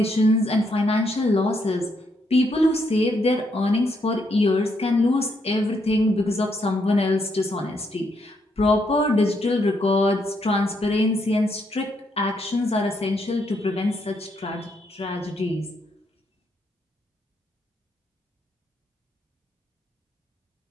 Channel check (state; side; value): normal; both; correlation 0.76